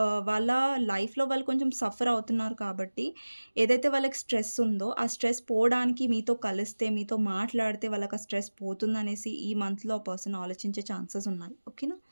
వాళ్ళ లైఫ్‌లో వాళ్ళు కొంచెం సఫర్ అవుతున్నారు కాబట్టి, ఏదైతే వాళ్ళకి స్ట్రెస్ ఉందో, ఆ స్ట్రెస్ పోవడానికి మీతో కలిస్తే, మీతో మాట్లాడితే వాళ్ళకి ఆ స్ట్రెస్ పోతుందనేసి ఈ మంత్‌లో ఆ పర్సన్ ఆలోచించే ఛాన్సెస్ ఉన్నాయి. ఓకేనా?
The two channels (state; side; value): inverted; both; correlation -1.00